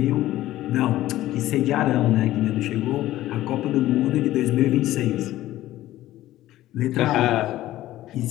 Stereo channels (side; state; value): right; quieter; 14.9 dB